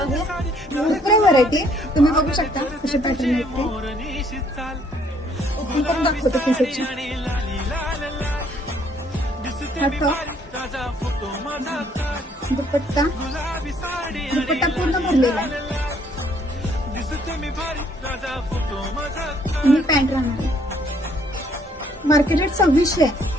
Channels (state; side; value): normal; both; correlation 0.65